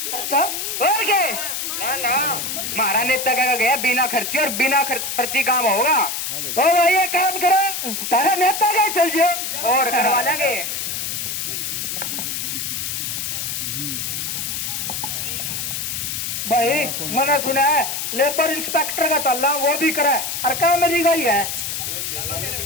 अच्छा और क्या? ना हमारा नेता क्या गया बिना खर्ची, और बिना खर्ची काम होगा। तो भाई ये काम करो, तारा नेता का चल जाओ और करवा लेंगे। भाई मैंने सुना है लेबर इंस्पेक्टर का चल रहा, वो भी करा है, और काम मेरी गई है।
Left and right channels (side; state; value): left; noise; hiss, 3 dB below the sound